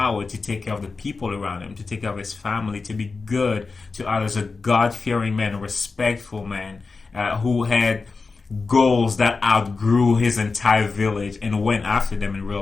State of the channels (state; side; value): quieter; right; 4.3 dB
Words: to take care of the people around him, to take care of his family, to be good to others, a God-fearing man, a respectful man, who had goals that outgrew his entire village and went after them and